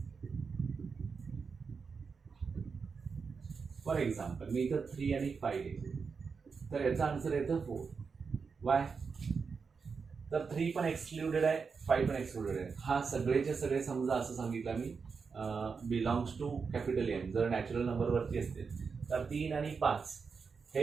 फॉर एक्झाम्पल मी इथं 3 आणि 5 घेतले तर याचा आन्सर येतं 4. वाय, तर 3 पण एक्सक्लुडेड आहे, 5 पण एक्सक्लुडेड आहे. हा सगळेचे सगळे समजा असं सांगितलं मी बिलॉंग्स टू कॅपिटल एम. जर नॅचरल नंबरवरती असतील तर 3 आणि 5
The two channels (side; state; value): left; quieter; 5.4 dB